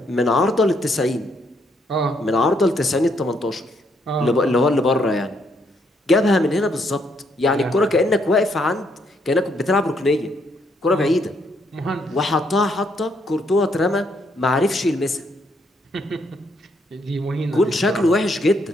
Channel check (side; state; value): both; normal; correlation 0.73